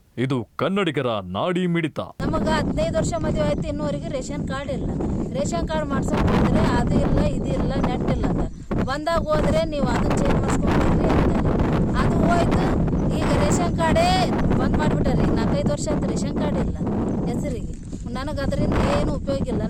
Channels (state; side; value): identical; both; correlation 1.00